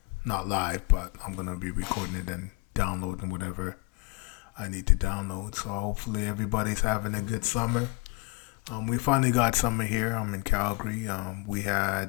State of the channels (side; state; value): right; quieter; 26.7 dB